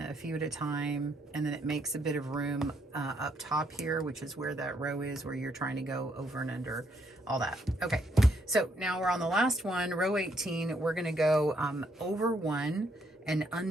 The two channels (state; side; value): normal; both; correlation 0.73